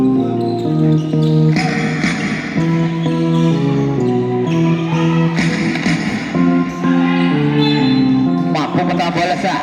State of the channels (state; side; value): identical; both; correlation 1.00